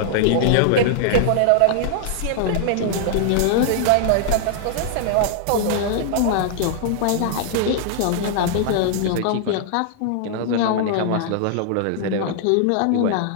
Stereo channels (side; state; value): both; different; correlation -0.01